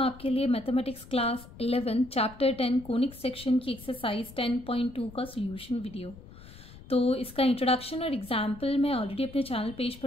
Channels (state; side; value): noise; left; rumble, 18 dB below the sound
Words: आपके लिए mathematics class 11 chapter 10 conic section की एक्सरसाइज 10.2 का सोल्यूशन वीडियो। तो इसका इंट्रोडक्शन और एग्जाम्पल मैं ऑलरेडी अपने चैनल पेज